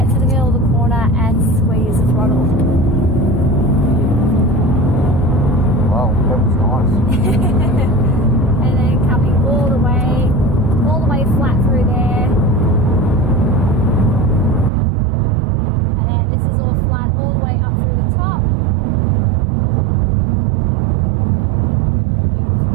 to the middle of the corner and squeeze the throttle. Wow, that was nice. And then coming all the way flat through there. And then this is all flat all the way up through the top.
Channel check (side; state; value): left; drops out; at 14.7 s